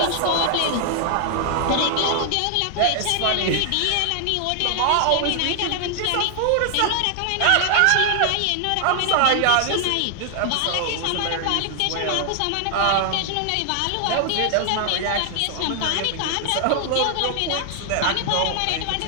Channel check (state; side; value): different; both; correlation 0.00